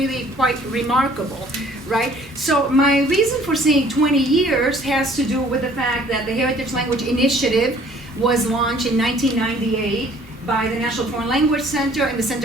quite remarkable, right? So my reason for saying 20 years has to do with the fact that the Heritage Language Initiative was launched in 1998 by the National Foreign Language Center and the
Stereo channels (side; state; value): both; normal; correlation 0.56